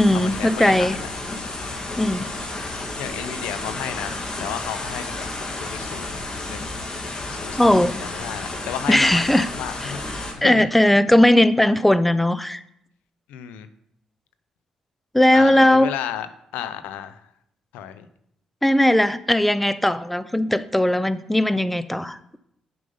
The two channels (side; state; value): both; normal; correlation 0.94